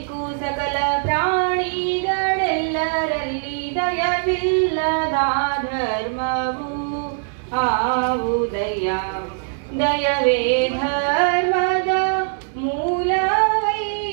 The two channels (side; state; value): left; silent; digital silence